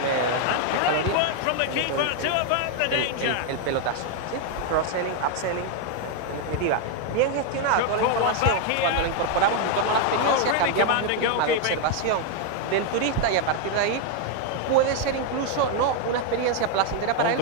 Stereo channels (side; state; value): both; different; correlation 0.01